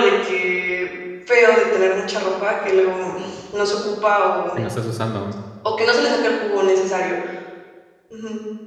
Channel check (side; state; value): both; identical; correlation 1.00